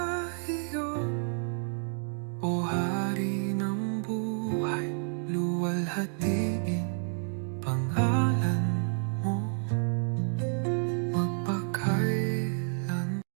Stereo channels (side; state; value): left; silent; 58 dB below the other